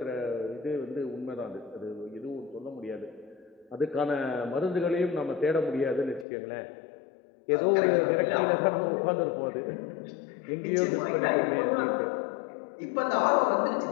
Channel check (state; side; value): drops out; right; at 6.2 s